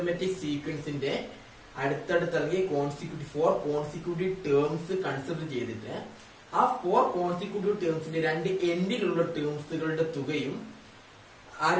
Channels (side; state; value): both; identical; correlation 1.00